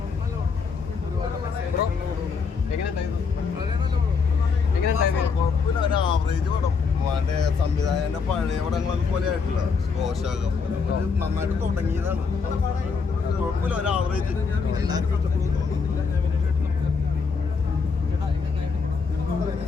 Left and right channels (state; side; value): quieter; right; 5.3 dB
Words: കുഴപ്പമില്ല, ഒരു ആവറേജ് പടം. മറ്റേ സംവിധായകന്റെ പഴയ പടങ്ങളൊക്കെ പോലെ ആയിട്ടില്ല, സ്ലോശാകം പോലെ ഒരു നന്നായിട്ട് തുടങ്ങിയതാണ്. കുഴപ്പമില്ല, ഒരു ആവറേജ്. എല്ലാവർക്കും ഇഷ്ടപ്പെടുന്നു.